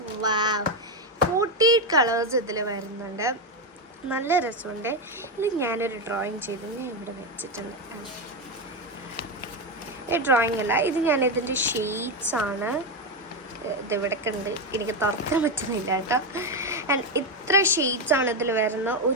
48 കളേഴ്സ് ഇതിൽ വരുന്നുണ്ട്. നല്ല രസമുണ്ട്. ഇത് ഞാനൊരു ഡ്രോയിങ് ചെയ്തു, ഞാൻ ഇവിടെ വെച്ചിട്ടുണ്ട്. ഈ ഡ്രോയിങ് അല്ല, ഇത് ഞാനിതിൻ്റെ ഷെയ്ഡ്സാണ്. ഇതിവിടൊക്കെ ഉണ്ട്, എനിക്ക് തുറക്കാൻ പറ്റുന്നില്ല കേട്ടോ. ആൻഡ് ഇത്ര ഷെയ്ഡ്സാണ് ഇതിൽ വരുന്ന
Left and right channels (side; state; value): both; normal; correlation 0.09